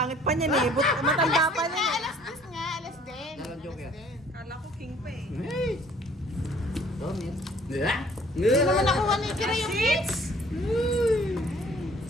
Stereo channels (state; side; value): normal; both; correlation 0.56